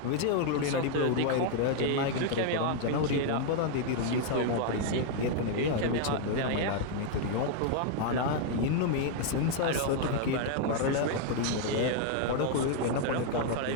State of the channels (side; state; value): both; different; correlation 0.00